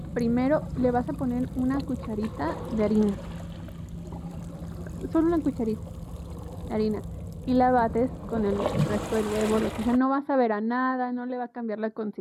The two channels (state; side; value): identical; both; correlation 1.00